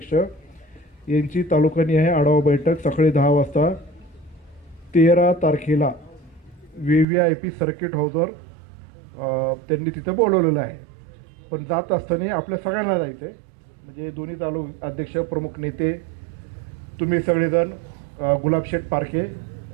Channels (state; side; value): drops out; left; at 7.1 s